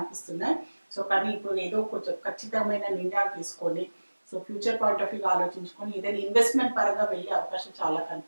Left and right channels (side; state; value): both; inverted; correlation -1.00